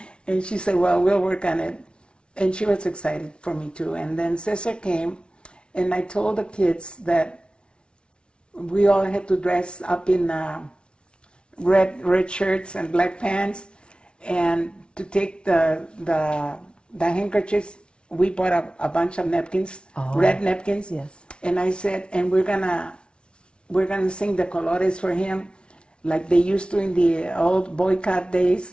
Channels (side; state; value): right; late; 0.057 ms